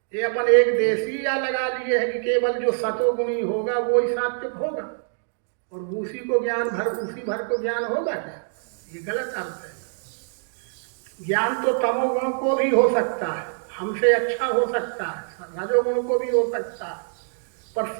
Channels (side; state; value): left; silent; digital silence